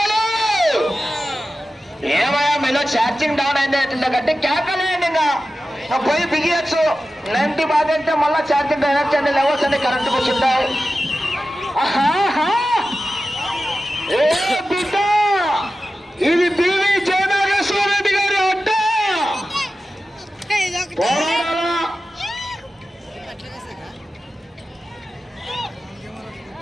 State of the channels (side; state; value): both; normal; correlation 0.93